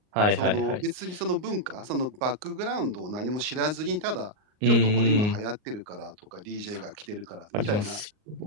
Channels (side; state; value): left; late; 38 ms